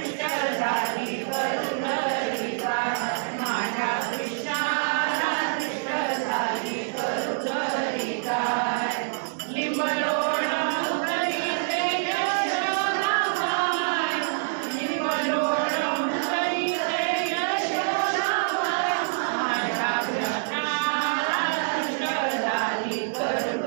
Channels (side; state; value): left; silent; digital silence